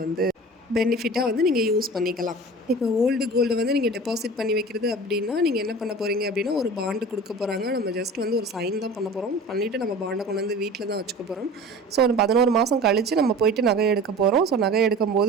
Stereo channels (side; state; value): both; normal; correlation 0.38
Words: வந்து பெனிஃபிட்டாக வந்து நீங்கள் யூஸ் பண்ணிக்கலாம். இப்போ ஓல்டு கோல்டு வந்து நீங்கள் டெபாசிட் பண்ணி வைக்கிறது அப்படின்னா நீங்கள் என்ன பண்ண போகிறீங்க அப்படின்னா ஒரு பாண்டு கொடுக்க போகிறாங்க. நம்ம ஜஸ்ட் வந்து ஒரு சைன் தான் பண்ண போகிறோம். பண்ணிவிட்டு நம்ம பாண்டை கொண்டு வந்து வீட்டில் தான் வச்சுக்க போகிறோம். ஸோ ஒரு 11 மாதம் கழித்து நம்ம போயிட்டு நகை எடுக்க போகிறோம். ஸோ நகை எடுக்கும்